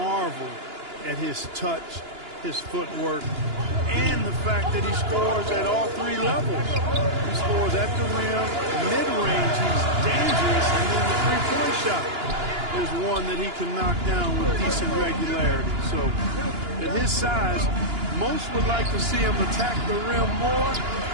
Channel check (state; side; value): late; left; 2.9 ms